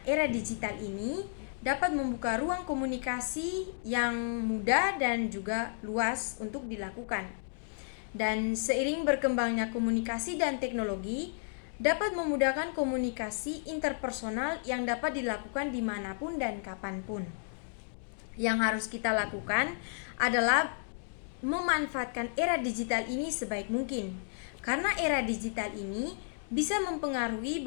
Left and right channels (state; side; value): silent; right; digital silence